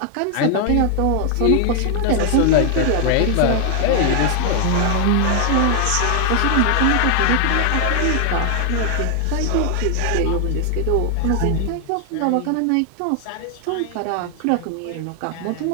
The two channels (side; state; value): both; different; correlation 0.00